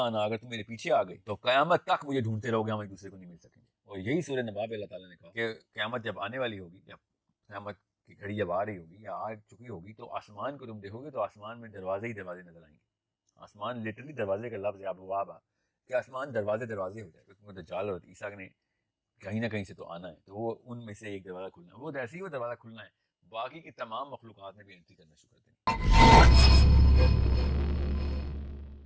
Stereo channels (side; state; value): both; identical; correlation 1.00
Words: اگر تم میرے پیچھے آ گئی تو قیامت تک مجھے ڈھونڈتے رہو گے, ہم ایک دوسرے کو نہیں مل سکیں گے. اور یہی سورہ نبا میں اللہ تعالیٰ نے کہا کہ قیامت جب آنے والی ہوگی, جب قیامت کی گھڑی جب آ رہی ہوگی یا آ چکی ہوگی, تو آسمان کو تم دیکھو گے تو آسمان میں دروازے ہی دروازے نظر آئیں گے. آسمان لٹرلی دروازے کا لفظ ہے, ابواب کہ آسمان دروازے دروازے ہو جائے, کیونکہ دجال اور عیسیٰ نے کہیں نہ کہیں سے تو آنا ہے, تو وہ ان میں سے ایک دروازہ کھلنا ہے, وہ ایسے ہی وہ دروازہ کھلنا ہے, باقی کی تمام مخلوقات نے بھی انٹری کرنا شروع کر دیں.